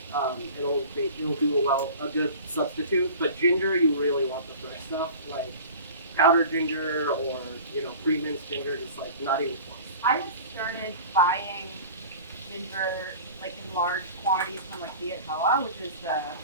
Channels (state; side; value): inverted; both; correlation -0.40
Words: It'll do a good substitute. But ginger, you really want the fresh stuff, like powdered ginger or pre-minced ginger, just not even close. I have started buying ginger in large quantities from Viet Hoa, which is the